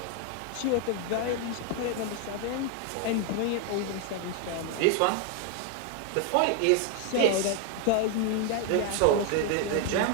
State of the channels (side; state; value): both; different; correlation 0.00